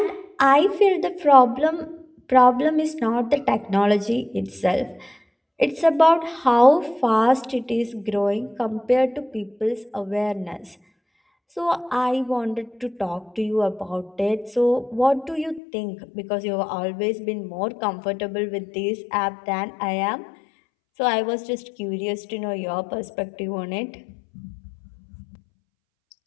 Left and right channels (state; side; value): drops out; right; at 15.6 s